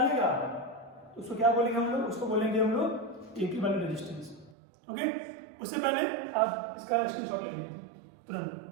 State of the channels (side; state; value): left; drops out; at 4.5 s